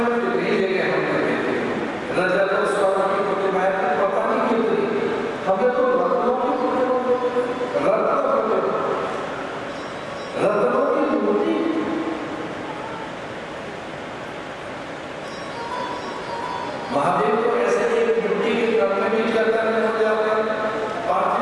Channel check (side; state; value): both; identical; correlation 1.00